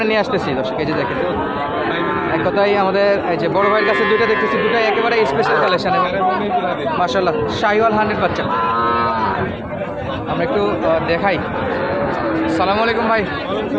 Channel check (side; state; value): right; noise; rumble, 24 dB below the sound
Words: নিয়ে আসতেছি। দর্শক, এই যে দেখেন, এক কথায় আমাদের এই যে বড় ভাইয়ের কাছে দুইটা দেখতেছি, দুটাই একেবারে স্পেশাল কালেকশন এবং মাশাআল্লাহ শাহিওয়াল 100 বাচ্চা। আমরা একটু দেখাই। সালামু আলাইকুম ভাই,